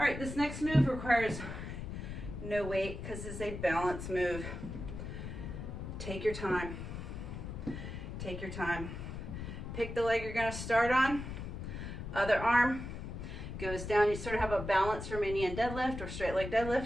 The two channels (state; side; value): noise; left; rumble, 7 dB below the sound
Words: right, this next move requires no weight because it's a balance move. Take your time. Take your time. Pick the leg you're going to start on. Other arm goes down. You sort of have a balanced Romanian deadlift or straight leg